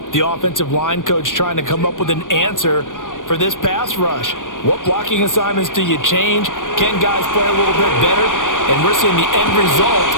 the offensive line coach trying to come up with an answer for this pass rush? What blocking assignments do you change? Can guys play a little bit better? And we're seeing the end result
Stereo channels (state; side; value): late; right; 0.88 ms